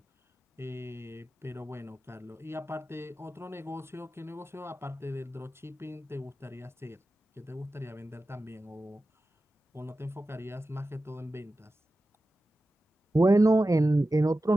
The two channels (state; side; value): normal; both; correlation 0.94